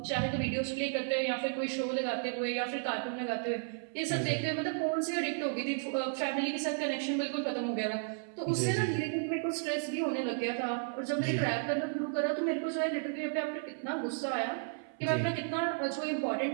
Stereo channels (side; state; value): left; silent; 55 dB below the other